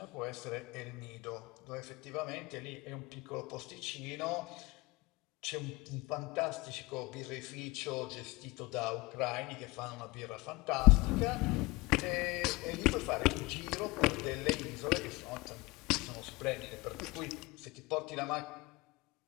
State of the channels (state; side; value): quieter; right; 23.0 dB